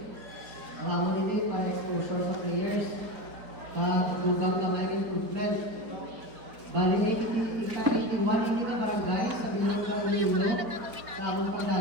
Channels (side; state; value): left; late; 4.6 ms